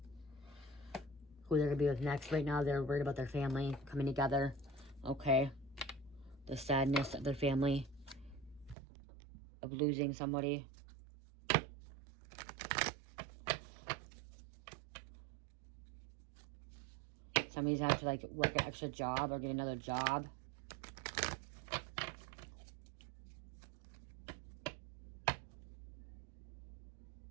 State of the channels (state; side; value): drops out; left; at 8.8 s